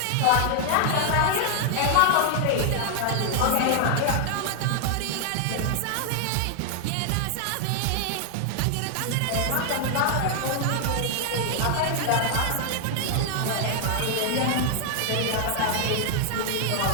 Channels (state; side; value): different; both; correlation 0.00